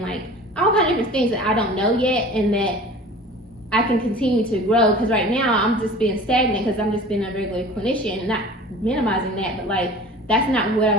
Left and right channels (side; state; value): both; normal; correlation 0.41